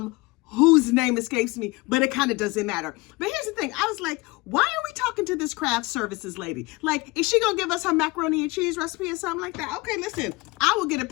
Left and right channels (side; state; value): right; quieter; 23.2 dB